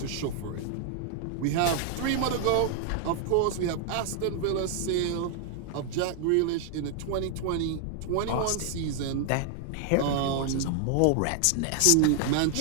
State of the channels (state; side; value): different; both; correlation 0.00